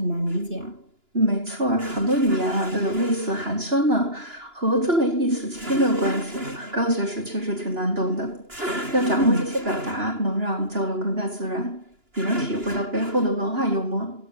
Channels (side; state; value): left; late; 2.9 ms